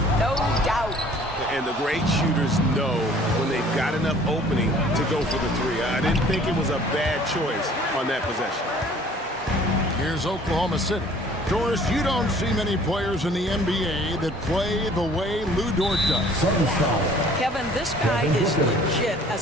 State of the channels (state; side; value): normal; both; correlation 0.53